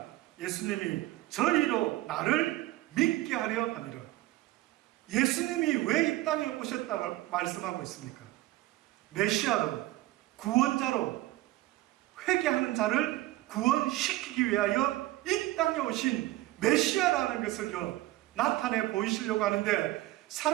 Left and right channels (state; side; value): quieter; left; 17.5 dB